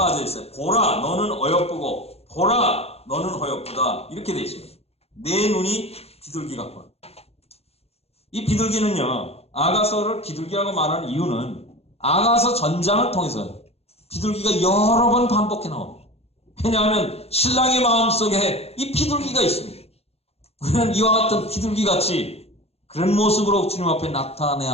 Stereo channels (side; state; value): right; late; 0.29 ms